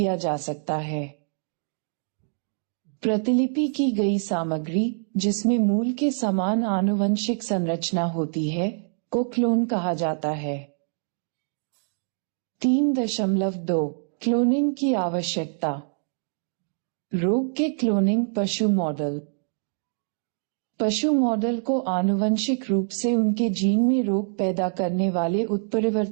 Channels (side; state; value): left; silent; digital silence